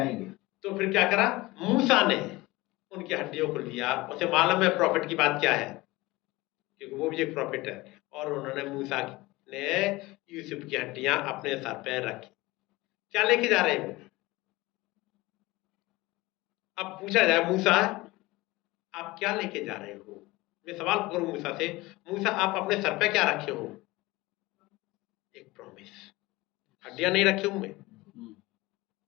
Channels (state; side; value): quieter; right; 20.6 dB